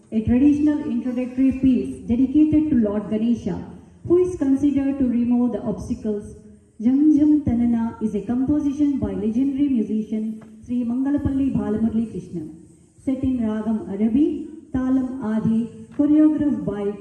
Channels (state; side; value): identical; both; correlation 1.00